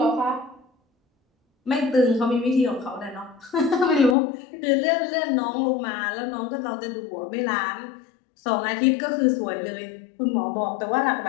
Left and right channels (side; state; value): right; drops out; at 4.2 s